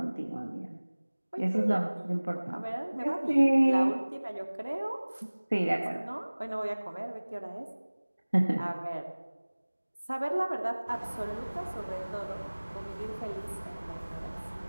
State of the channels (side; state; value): both; inverted; correlation -1.00